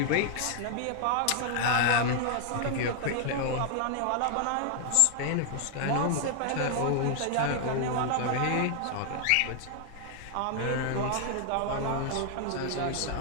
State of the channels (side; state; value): both; different; correlation 0.00